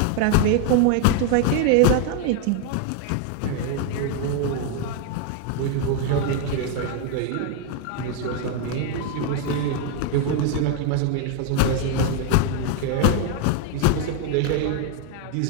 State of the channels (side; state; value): both; different; correlation 0.01